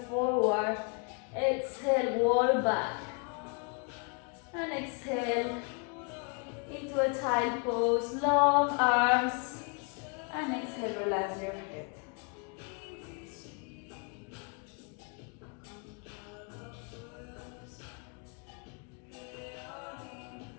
forward. Exhale, wall back. And exhale into a child pose, long arms. And exhale, relax your head.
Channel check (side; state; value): right; quieter; 35.5 dB